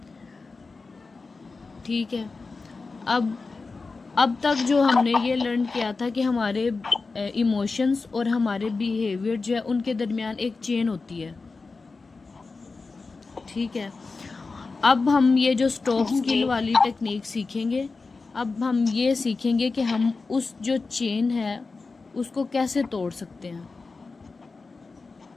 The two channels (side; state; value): right; quieter; 4.1 dB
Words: ठीक है। अब तक जो हमने ये लर्न किया था कि हमारे इमोशंस और हमारे बिहेवियर जो है उनके दरमियान एक चेन होती है, ठीक है। अब हम ये जो स्टॉप स्किल वाली टेक्निक सीखेंगे, अब हम ये सीखेंगे कि हम उस जो चेन है उसको कैसे तोड़ सकते हैं,